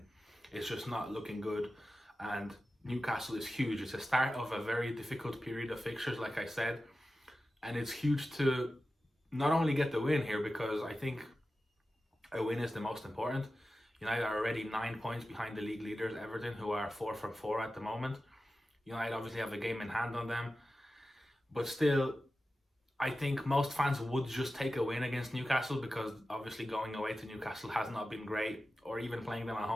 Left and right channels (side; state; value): both; normal; correlation 0.93